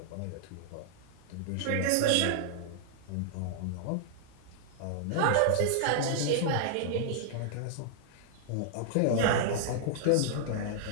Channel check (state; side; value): different; both; correlation -0.01